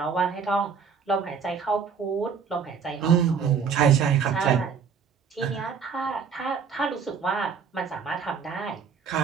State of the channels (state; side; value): quieter; left; 6.2 dB